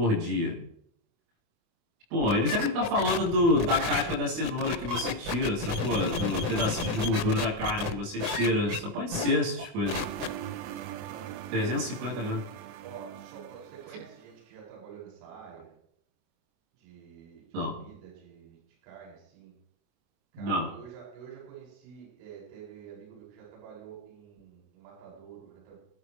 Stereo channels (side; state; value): left; late; 29 ms